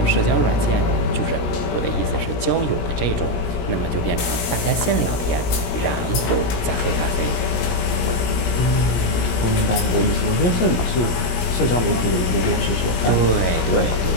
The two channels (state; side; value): late; right; 17 ms